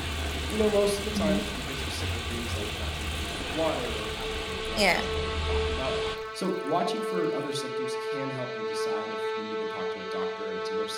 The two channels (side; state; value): both; identical; correlation 1.00